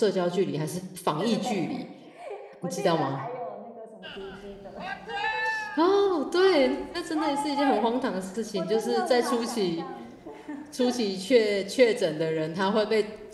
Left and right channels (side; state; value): both; identical; correlation 1.00